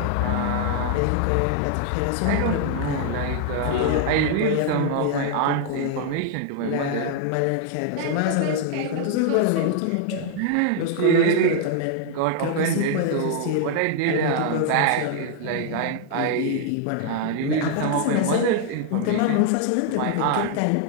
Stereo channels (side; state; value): both; different; correlation 0.00